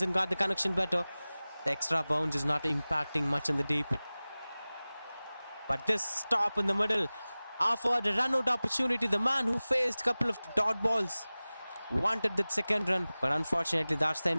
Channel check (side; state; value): both; inverted; correlation -0.98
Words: and got the connection better. The extra bounce is not impacting much in the deep. But this stop in the middle offered a run-out opportunity. The man who faced a couple of dot balls wanted that second run. But unfortunately, that's the